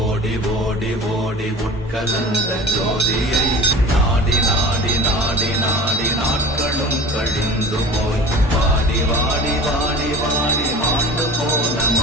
ஓடி ஓடி உட்கலந்த ஜோதியை நாடி நாடி நாடி நாடி நாட்களும் கழிந்து போய் வாடி வாடி வாடி வாடி மாண்டு போன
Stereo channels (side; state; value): both; normal; correlation 0.39